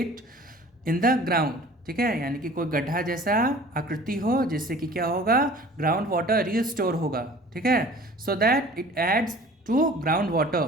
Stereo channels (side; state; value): both; normal; correlation 0.46